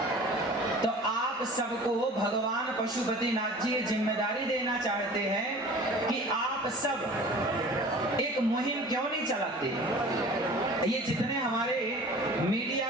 तो आप सबको भगवान पशुपतिनाथ जी जिम्मेदारी देना चाहते हैं कि आप सब एक मुहिम क्यों नहीं चलाते? ये जितने हमारे मीडिया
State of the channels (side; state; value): both; normal; correlation 0.43